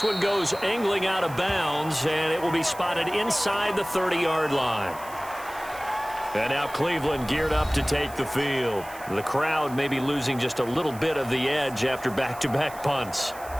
one goes angling out of bounds, and it will be spotted inside the 30-yard line. And now Cleveland geared up to take the field. The crowd may be losing just a little bit of the edge after back-to-back punts.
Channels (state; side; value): noise; right; hiss, 18 dB below the sound